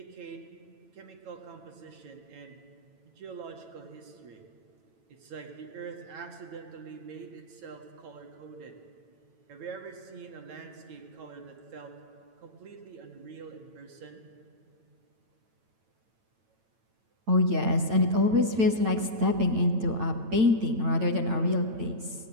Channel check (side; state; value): left; late; 9.0 ms